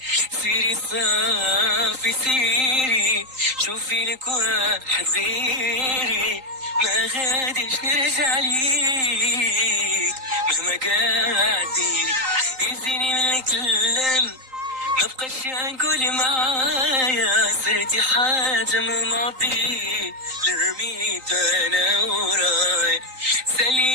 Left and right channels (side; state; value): left; late; 3.8 ms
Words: سيري صافي سيري شوفي لك واحد غيري ما غاديش نرجع ليك مهما قاعد ديري. يزيني من الكلام ما بقاش نقول معايا صرتي حاجة من الماضي لرميت انا وراي.